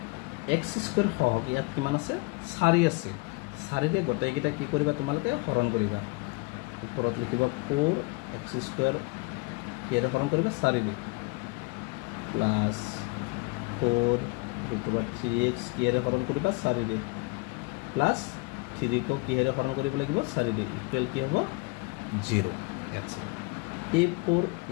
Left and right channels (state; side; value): quieter; right; 26.6 dB